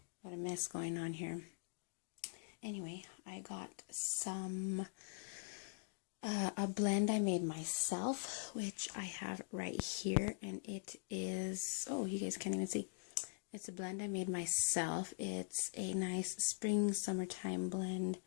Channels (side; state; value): right; silent; digital silence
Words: a mess going on here. Anyway, I got some a blend I made myself, which I have right here, and it is, oh, you guys can't even see. It's a blend I made myself. It's a nice spring summertime blend.